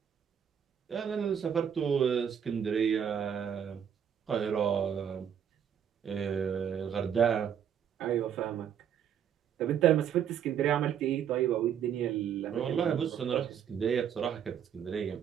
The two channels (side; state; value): left; quieter; 8.6 dB